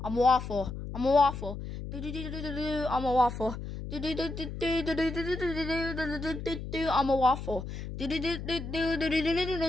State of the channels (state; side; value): noise; left; hum, 8 dB below the sound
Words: I'm a waffle. I'm a waffle. Do do do do do do. I'm a waffle. Do do do do do do do do do do do do. I'm a waffle. Do do do do do do do